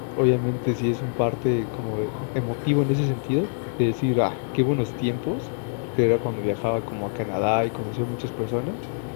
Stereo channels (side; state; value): right; silent; digital silence